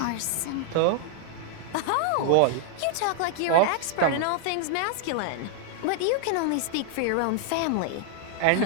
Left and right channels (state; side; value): different; both; correlation 0.00